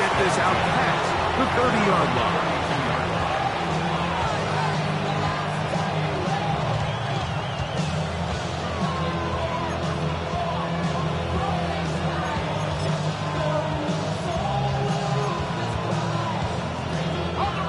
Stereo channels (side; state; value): both; identical; correlation 1.00